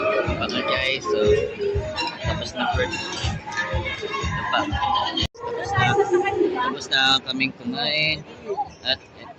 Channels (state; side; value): identical; both; correlation 1.00